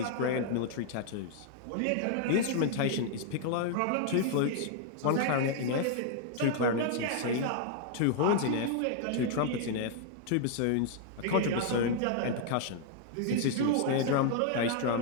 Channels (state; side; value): different; both; correlation -0.01